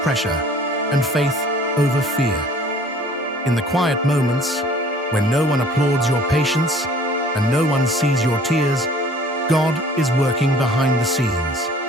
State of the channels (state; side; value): normal; both; correlation 0.52